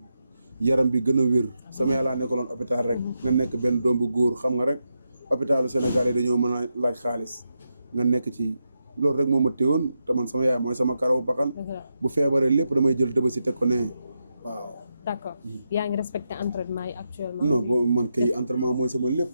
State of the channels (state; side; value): inverted; both; correlation -0.86